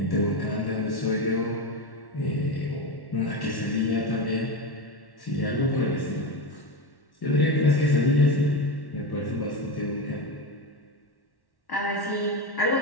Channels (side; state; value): right; late; 1.1 ms